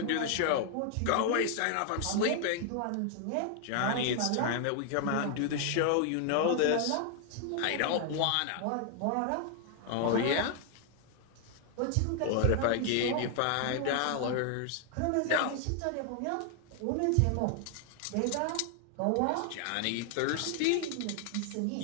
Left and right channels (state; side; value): different; both; correlation 0.00